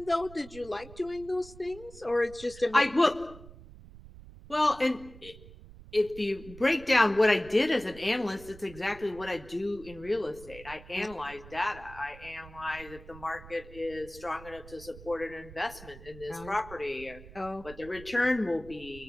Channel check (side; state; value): right; noise; rumble, 18 dB below the sound